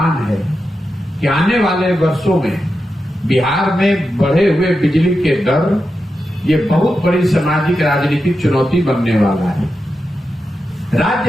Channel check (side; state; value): both; normal; correlation 0.89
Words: है कि आने वाले वर्षों में बिहार में बढ़े हुए बिजली के दर ये बहुत बड़ी सामाजिक राजनीतिक चुनौती बनने वाला है।